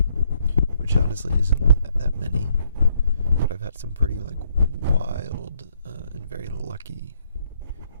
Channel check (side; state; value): both; inverted; correlation -0.70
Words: which honestly isn't that many, but I've had some pretty like wild and very lucky,